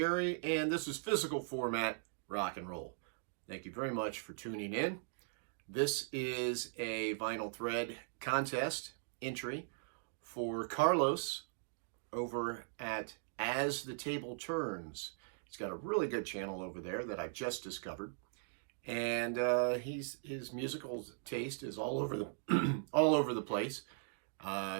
and this is physical format rock and roll. Thank you very much for tuning in. This is a vinyl thread contest entry for Carlos over at As the Table Turns. He's got a really good channel over there that I've just discovered, and his musical taste is all over the all over the place.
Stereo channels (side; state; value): left; silent; digital silence